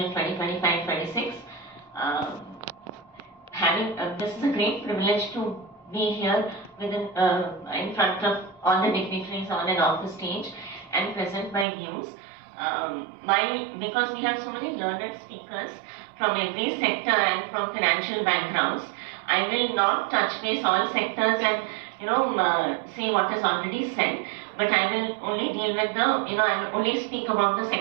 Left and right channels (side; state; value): left; drops out; at 11.7 s